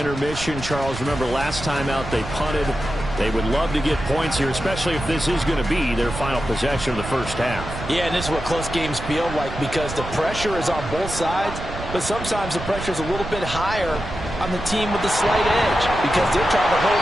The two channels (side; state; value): right; noise; rumble, 9 dB below the sound